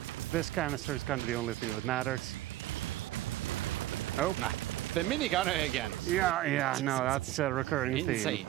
this canister is kind of the only thing that matters. Oh. Nah, the minigunner again. Yeah, no, that's a recurring theme. Insane.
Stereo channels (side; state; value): left; quieter; 15.3 dB